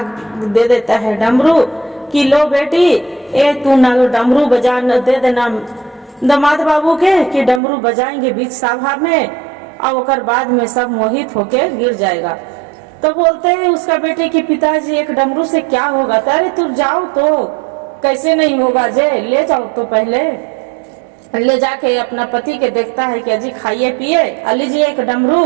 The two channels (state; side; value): drops out; left; at 7.6 s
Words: दे देता है डमरू कि लो बेटी ए तू ना डमरू बजा दे देना दामाद बाबू के कि डमरू बजाएंगे बीच सभा में और ओकर बाद में सब मोहित होके गिर जाएगा। तो बोलते हैं उसका बेटे कि पिताजी एक डमरू से क्या होगा? अरे तू जाओ तो कैसे नहीं होगा जे, ले जाओ तो पहले ले जाके अपना पति के देखता है कि अजी खाइए पिए, लीजिए एक डमरू,